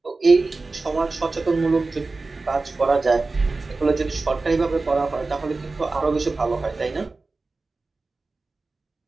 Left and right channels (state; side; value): quieter; left; 3.6 dB